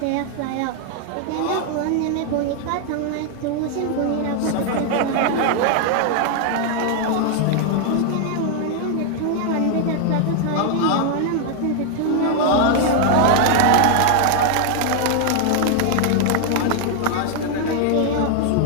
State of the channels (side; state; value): both; different; correlation 0.00